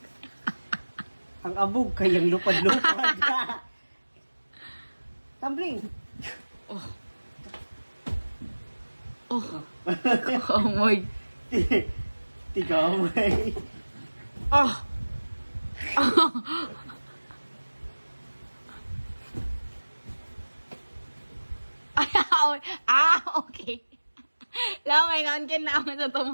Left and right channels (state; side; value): inverted; both; correlation -1.00